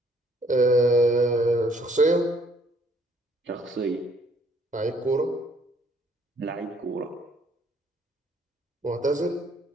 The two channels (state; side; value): normal; both; correlation 0.64